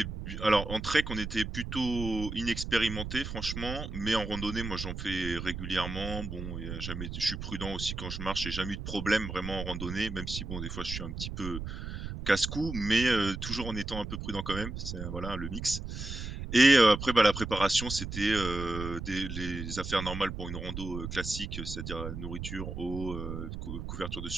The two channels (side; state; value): right; noise; rumble, 6 dB below the sound